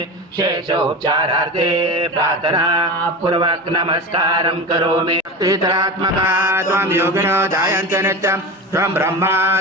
शेषोपचारार्थे प्रार्थना पूर्वक नमस्कारं करोमि। त्रितरात्मका त्वं योगिनो जायन्ते नित्यं त्वं ब्रह्मा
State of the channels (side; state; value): both; normal; correlation 0.27